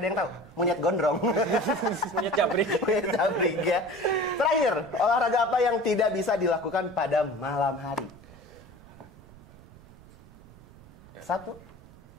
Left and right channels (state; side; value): noise; right; rumble, 21 dB below the sound